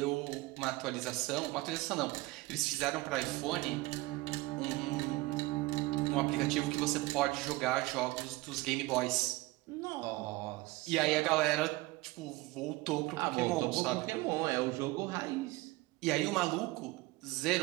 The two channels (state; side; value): quieter; left; 20.9 dB